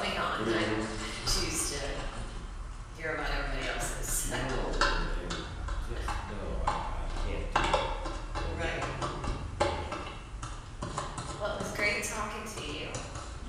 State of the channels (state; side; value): identical; both; correlation 1.00